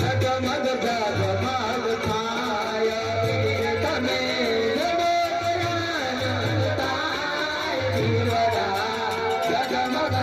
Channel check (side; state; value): both; identical; correlation 1.00